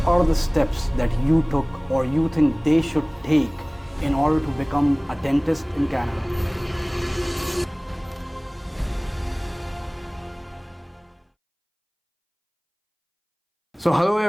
are the steps that you took or you think they should take in order to become a dentist in Canada? So hello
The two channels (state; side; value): identical; both; correlation 1.00